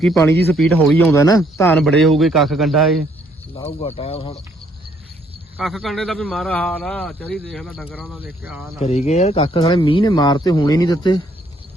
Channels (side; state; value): both; normal; correlation 0.67